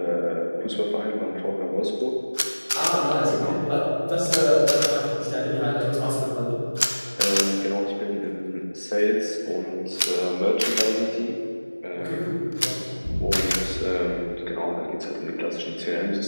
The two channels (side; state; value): both; inverted; correlation -1.00